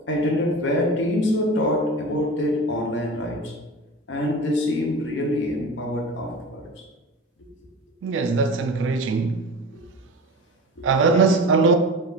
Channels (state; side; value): normal; both; correlation 0.32